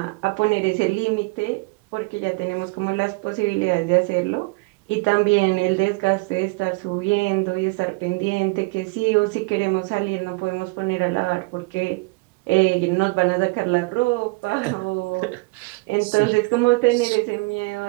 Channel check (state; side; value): quieter; left; 26.8 dB